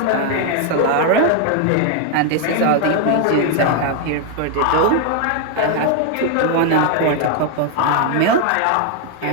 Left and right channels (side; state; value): both; different; correlation 0.01